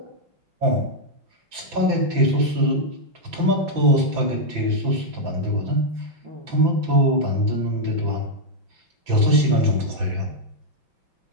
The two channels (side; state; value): left; late; 6.0 ms